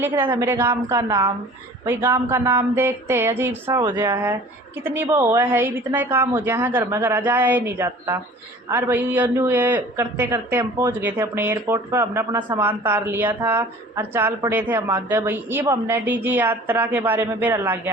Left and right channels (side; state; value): both; normal; correlation 0.46